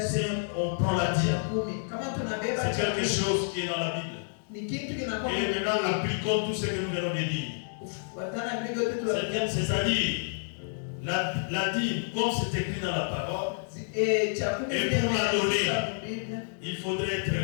Si on prend la dîme, c'est quelque chose qui est dans la Bible. Et maintenant, appliquons tout ce que nous venons de dire. C'est-à-dire, la dîme, comme c'est écrit dans la parole, et pour la donner, il faudrait être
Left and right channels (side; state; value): right; silent; digital silence